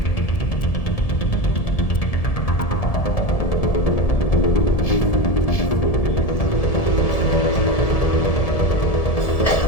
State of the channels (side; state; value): right; late; 1.7 ms